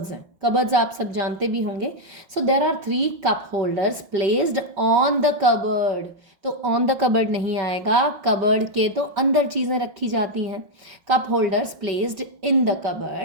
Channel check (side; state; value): left; late; 5.3 ms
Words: हैं, कबर्ड्स आप सब जानते भी होंगे। So there are 3 cup holders placed on the cupboard, तो ऑन द कबर्ड नहीं आएगा, कबर्ड के तो अंदर चीज़ें रखी जाती हैं। Cup holders placed in the